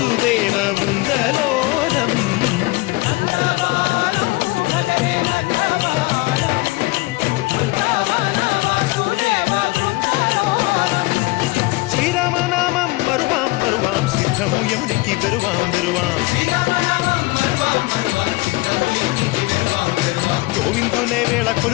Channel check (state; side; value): quieter; right; 22.0 dB